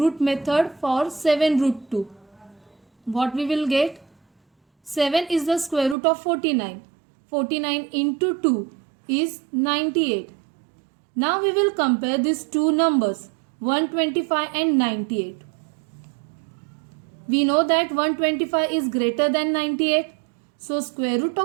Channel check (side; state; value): left; drops out; at 6.0 s